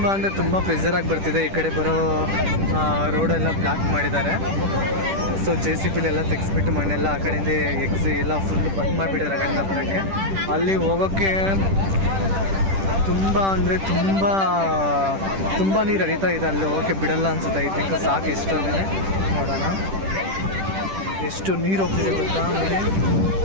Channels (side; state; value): left; late; 10 ms